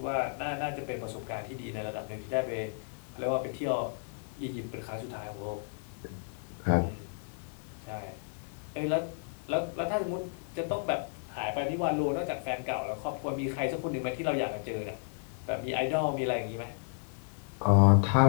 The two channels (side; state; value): right; silent; digital silence